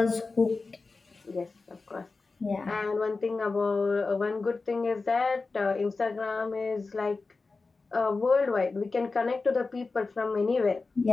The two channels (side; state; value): right; quieter; 3.9 dB